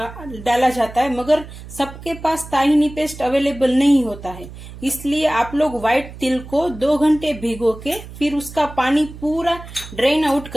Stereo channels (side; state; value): right; noise; hum, 14 dB below the sound